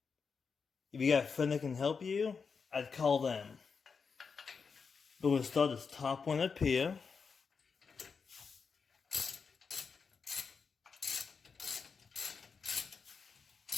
If you got a friend that can help you, I'd call them. But we'll start this top one up here.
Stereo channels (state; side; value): quieter; right; 5.5 dB